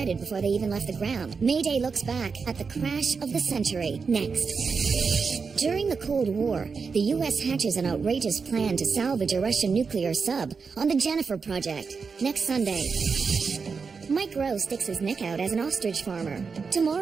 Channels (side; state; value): left; quieter; 5.2 dB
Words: before they even left the ground. Mayday looks back at the crash of the century. Next. During the Cold War, the U.S. hatches an outrageous plan to salvage a Russian nuclear sub on the Jennifer Project. Next Sunday. Mike Rowe sticks his neck out as an ostrich farmer.